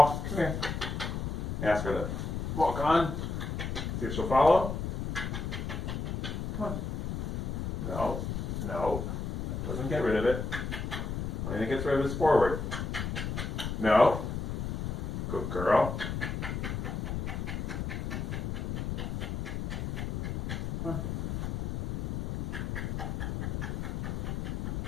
Come here. Ask her to walk on. See if she'll follow. Come on. No, no. That doesn't get rid of it. Only thing that gets rid of it is forward. No. Good girl. Come on.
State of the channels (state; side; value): noise; left; rumble, 3 dB below the sound